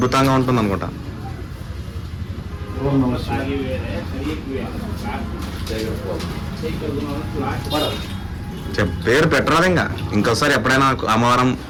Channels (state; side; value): identical; both; correlation 1.00